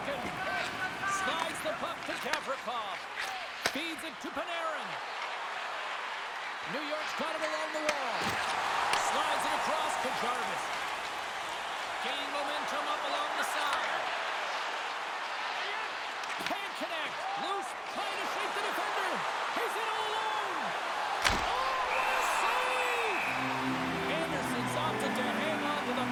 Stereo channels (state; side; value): identical; both; correlation 1.00